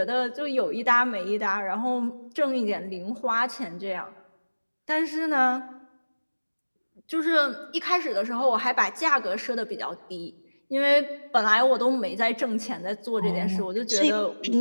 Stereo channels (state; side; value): inverted; both; correlation -1.00